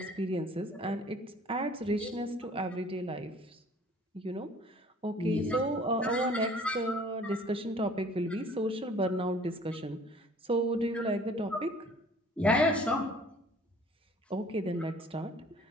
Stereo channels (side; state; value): both; normal; correlation 0.52